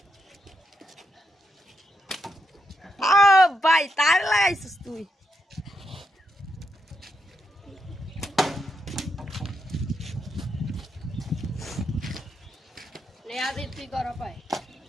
ভাই তার লাগাইছিস তুই। তুই কর পাই।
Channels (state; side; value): normal; both; correlation 0.81